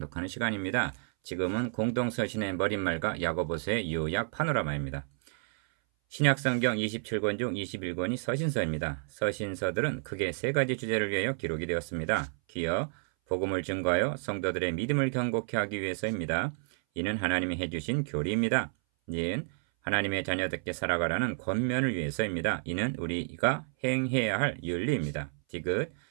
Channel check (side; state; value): left; silent; 57 dB below the other